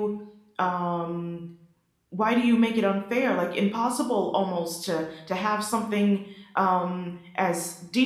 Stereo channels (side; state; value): both; identical; correlation 1.00